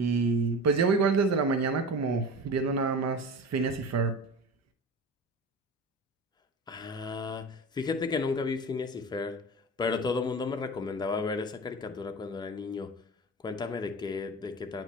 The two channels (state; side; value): normal; both; correlation 0.32